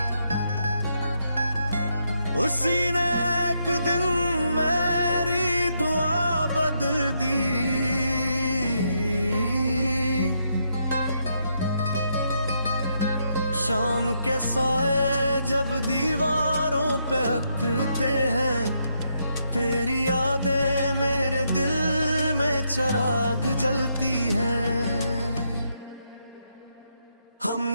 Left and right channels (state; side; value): inverted; both; correlation -0.78